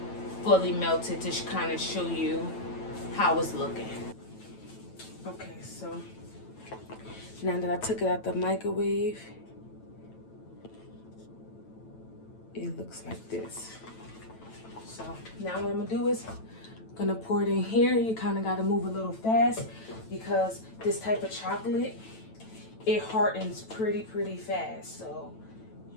fully melted to kind of show you how it's looking. Okay, so now that I took it out the microwave, it looks like this. So now what I'm gonna do is gonna pour it in here. You kind of got to move a little fast because this type of chocolate, it hardens pretty fast. So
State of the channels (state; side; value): late; right; 9.0 ms